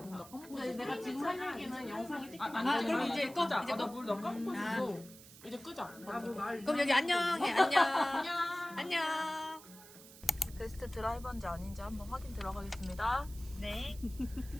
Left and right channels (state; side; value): noise; right; hiss, 19 dB below the sound